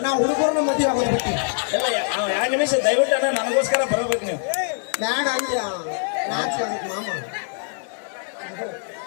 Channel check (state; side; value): silent; right; digital silence